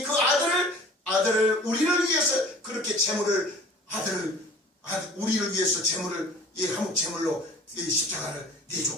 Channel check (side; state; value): both; normal; correlation 0.46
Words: 그 아들을 우리를 위해서 그렇게 우리를 위해서 한몫 제물로 이 십자가를